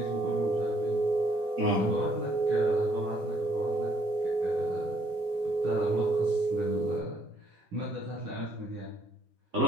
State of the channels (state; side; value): normal; both; correlation 0.67